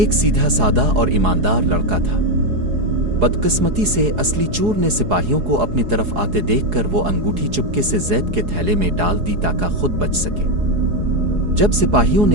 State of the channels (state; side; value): late; left; 4.8 ms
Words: سیدھا سادہ اور ایماندار لڑکا تھا۔ بدقسمتی سے اصلی چور نے سپاہیوں کو اپنی طرف آتے دیکھ کر وہ انگوٹھی چپکے سے زید کے تھیلے میں ڈال دی تاکہ خود بچ سکے۔ جب سپاہیوں